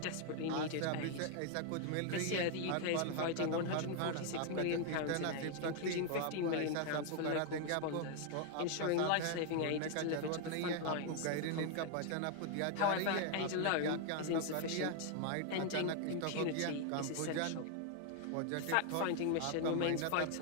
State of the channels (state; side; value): different; both; correlation 0.00